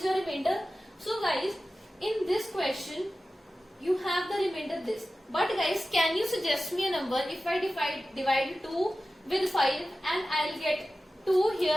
your remainder. So guys, in this question, you have the remainder this. But guys, can you suggest me a number if I divide 2 with 5 and I'll get 2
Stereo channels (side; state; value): both; normal; correlation 0.95